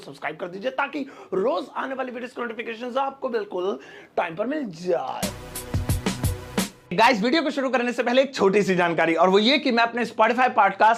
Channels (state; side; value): identical; both; correlation 1.00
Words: कर दीजिए ताकि रोज आने वाली वीडियोस की नोटिफिकेशन आपको बिल्कुल टाइम पर मिल जाए। गाइस, वीडियो को शुरू करने से पहले एक छोटी सी जानकारी, और वो ये कि मैं अपने Spotify